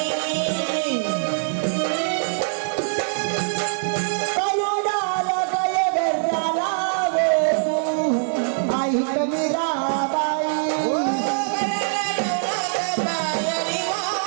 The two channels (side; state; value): left; silent; 64 dB below the other